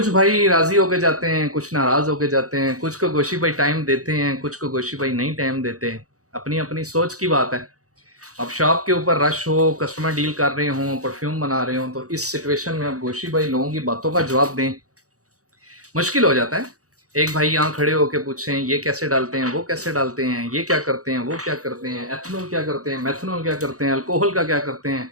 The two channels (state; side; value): late; left; 0.66 ms